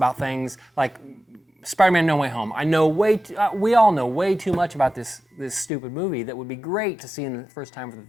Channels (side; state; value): right; drops out; at 5.7 s